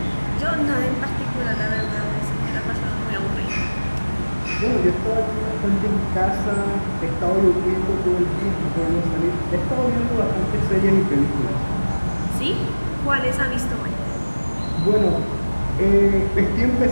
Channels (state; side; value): inverted; both; correlation -1.00